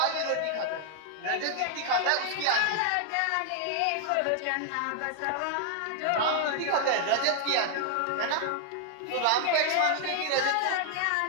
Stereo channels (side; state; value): both; different; correlation 0.00